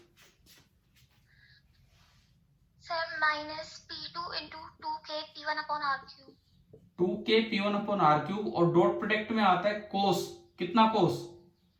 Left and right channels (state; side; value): identical; both; correlation 1.00